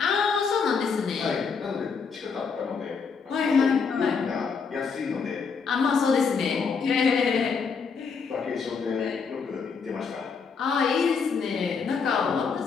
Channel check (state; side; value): quieter; right; 5.6 dB